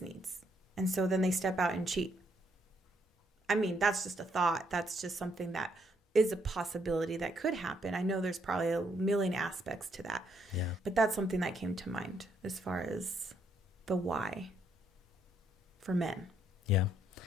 And so then they step out and cheat. I mean, that's just a thought. That's just something that is a possibility that could happen. I know there's probably a million aspects to that. Yeah. But that's something that came to mind as far as the why for men. Yeah.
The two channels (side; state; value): both; normal; correlation 0.73